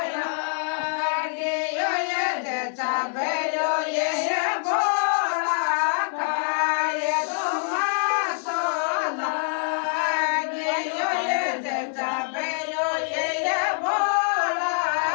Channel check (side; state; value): right; silent; 62 dB below the other